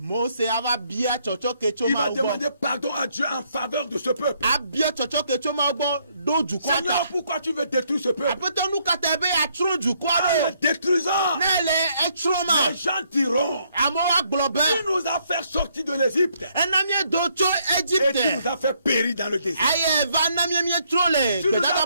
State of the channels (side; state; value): both; inverted; correlation -0.71